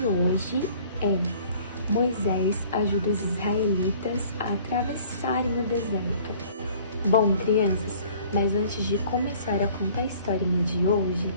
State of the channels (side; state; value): both; inverted; correlation -0.53